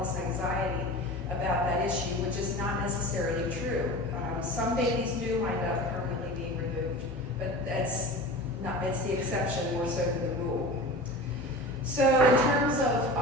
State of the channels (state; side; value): normal; both; correlation 0.34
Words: this anxiety about that issue, which is not necessarily true. Some babies do wind up permanently being removed, but that's it's the exception more so than the rule. So in terms of